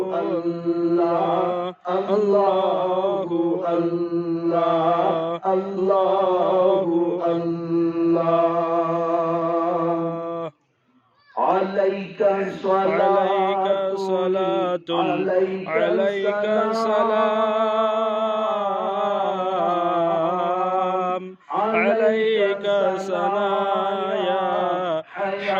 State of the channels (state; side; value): identical; both; correlation 1.00